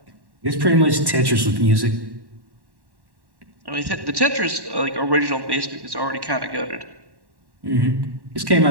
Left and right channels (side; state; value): left; late; 1.1 ms